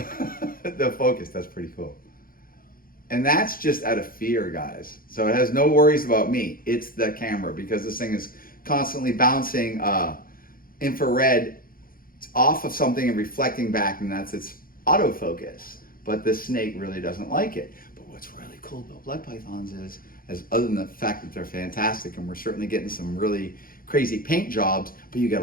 focus. That's pretty cool. And that's just out of fear, guys. So it has no worries about me. It's the camera, because this thing is constantly bouncing infrared off of something and reflecting back, and that's its autofocus. But this snake really doesn't like it. But what's really cool about blood pythons is, other than the fact that they're fantastic, and we're certainly getting some really crazy paint jobs, but you get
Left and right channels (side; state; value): right; late; 0.42 ms